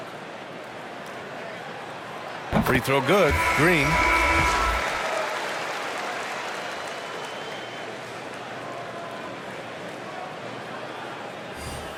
Free throw good. Green.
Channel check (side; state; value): both; identical; correlation 1.00